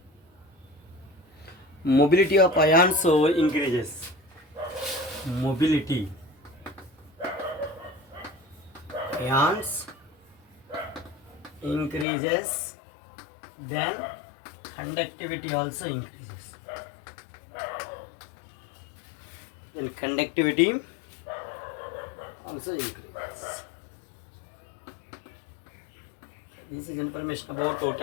mobility of ions so increases. Mobility ions increases, then conductivity also increases. Then conductivity also increases. This is information about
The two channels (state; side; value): drops out; right; at 12.1 s